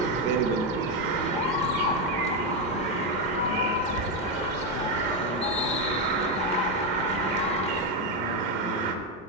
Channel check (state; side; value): normal; both; correlation 0.06